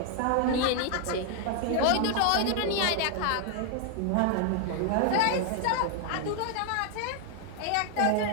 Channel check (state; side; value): different; both; correlation 0.00